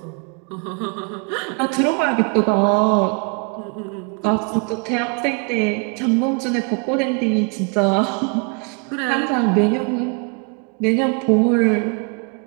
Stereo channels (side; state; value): left; quieter; 34.9 dB